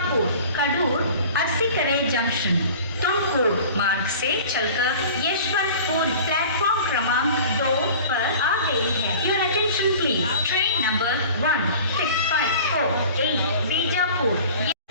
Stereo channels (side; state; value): both; inverted; correlation -0.42